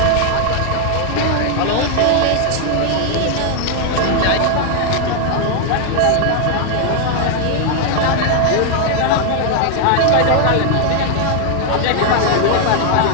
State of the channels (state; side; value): different; both; correlation 0.00